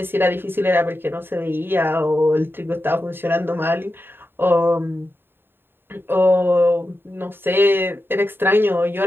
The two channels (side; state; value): left; late; 0.10 ms